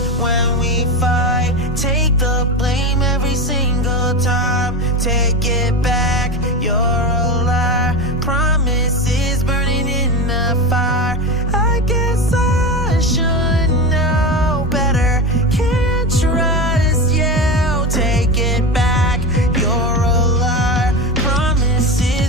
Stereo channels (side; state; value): both; normal; correlation 0.21